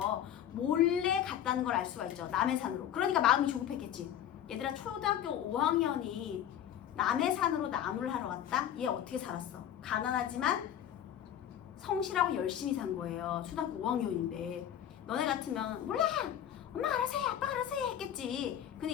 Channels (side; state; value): right; quieter; 10.3 dB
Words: 몰래 갔다는 걸 알 수가 있죠. 남의 산으로. 그러니까 마음이 조급했겠지. 얘들아, 초등학교 5학년이 남의 산으로 나무를 하러 갔다? 얘 어떻게 살았어? 가난하지만 성실하고 열심히 산 거예요. 초등학교 5학년인데. 너네 같으면 몰라! 엄마 알아서 해, 아빠 알아서 해 했겠지.